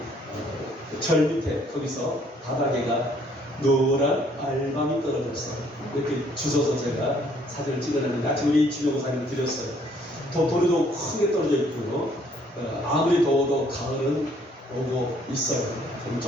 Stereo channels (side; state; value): both; normal; correlation 0.63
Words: 절 밑에 거기서 바닥에가 노란 알밤이 떨어져서 이렇게 주워서 제가 사진을 찍어냈는데 아침 우리 주명 사진을 드렸어요. 돌이도 크게 떨어져 있고요. 아무리 더워도 가을은 오고 있어요.